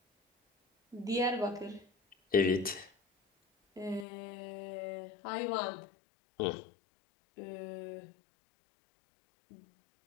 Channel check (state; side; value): drops out; right; at 4.0 s